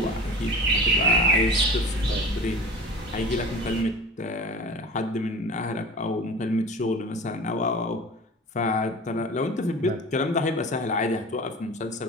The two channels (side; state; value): both; normal; correlation 0.37